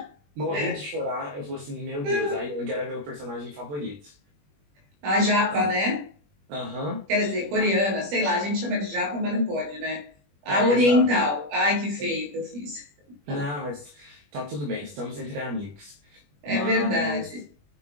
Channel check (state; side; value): late; left; 21 ms